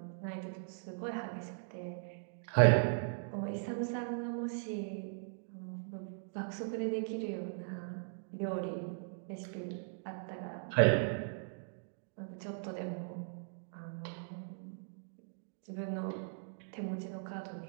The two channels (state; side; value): silent; left; digital silence